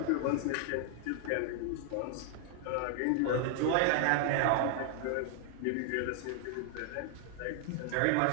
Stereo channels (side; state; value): both; different; correlation 0.00